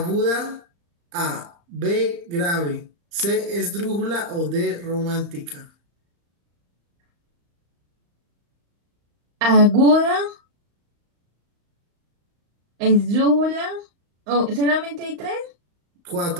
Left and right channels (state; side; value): late; left; 35 ms